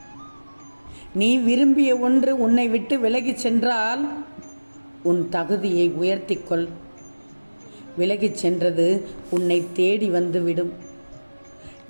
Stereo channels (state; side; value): inverted; both; correlation -1.00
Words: நீ விரும்பிய ஒன்று உன்னை விட்டு விலகிச் சென்றால் உன் தகுதியை உயர்த்திக்கொள். விலகிச் சென்றது உன்னை தேடி வந்துவிடும்.